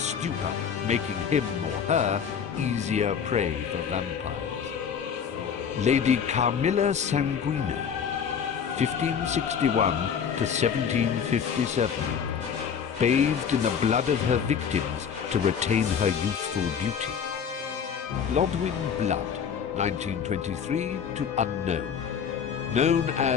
making him or her easier prey for vampires. Lady Carmilla Sanguina, 1561 to 1757, bathed in the blood of her victims to retain her youthful beauty. Lodwyn Blood, 1923 to unknown, known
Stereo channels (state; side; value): quieter; right; 7.3 dB